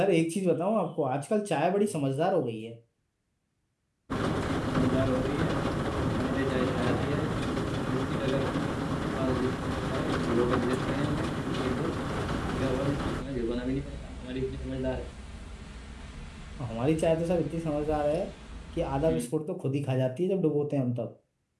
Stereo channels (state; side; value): identical; both; correlation 1.00